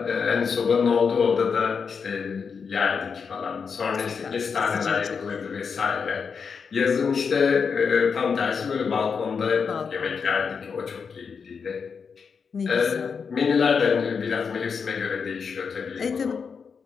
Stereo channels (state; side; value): quieter; right; 5.9 dB